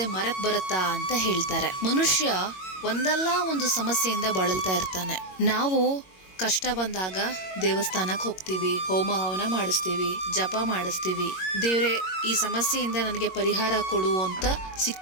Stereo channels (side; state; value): right; late; 21 ms